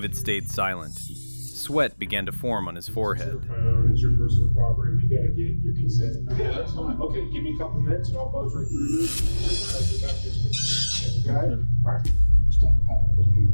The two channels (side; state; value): both; inverted; correlation -1.00